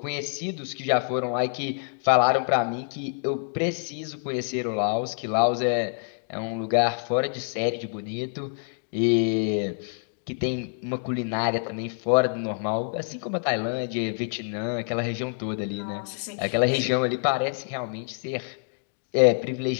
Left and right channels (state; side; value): silent; right; digital silence